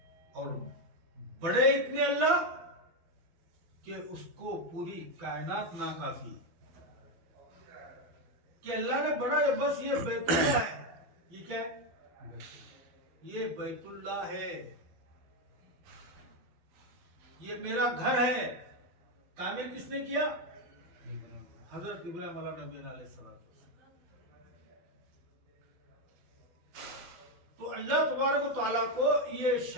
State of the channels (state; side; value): late; left; 12 ms